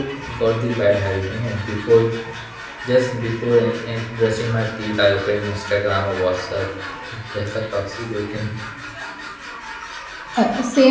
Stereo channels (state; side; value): identical; both; correlation 1.00